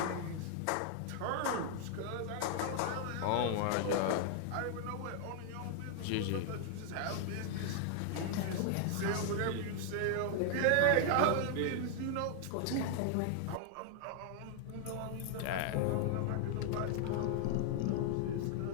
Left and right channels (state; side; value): different; both; correlation 0.00